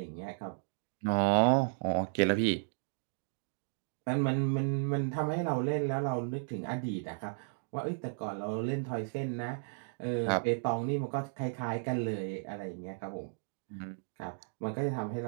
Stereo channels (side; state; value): left; silent; digital silence